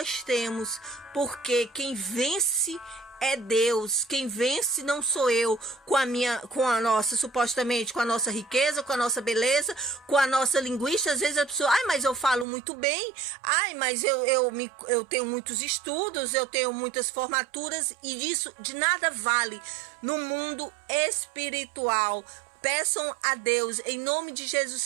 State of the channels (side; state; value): left; drops out; at 12.5 s